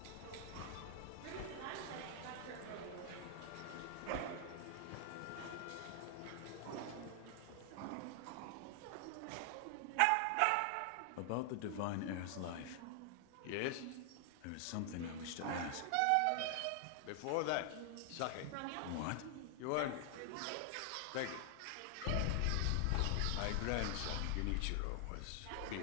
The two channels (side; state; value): both; different; correlation 0.00